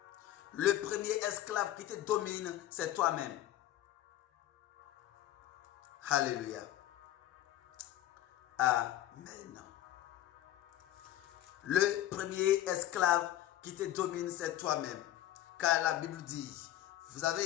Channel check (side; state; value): right; quieter; 13.1 dB